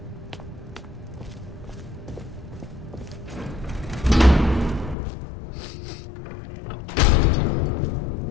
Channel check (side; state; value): right; drops out; at 5.0 s